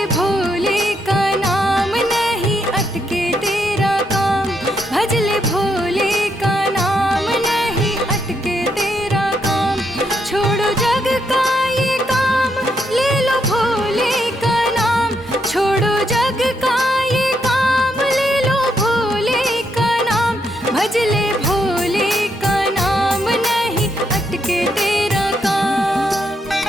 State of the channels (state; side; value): normal; both; correlation 0.78